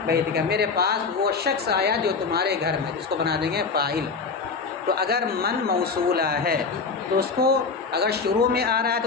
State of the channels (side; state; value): right; quieter; 4.9 dB